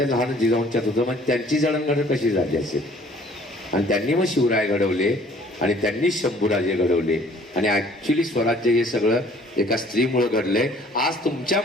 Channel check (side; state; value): both; normal; correlation 0.56